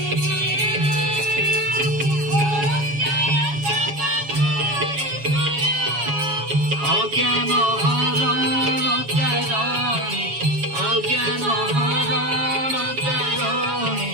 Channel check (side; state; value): left; late; 7.2 ms